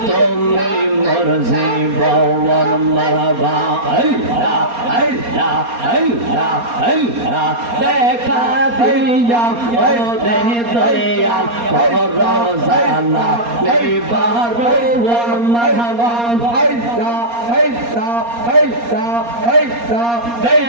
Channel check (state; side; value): late; left; 4.3 ms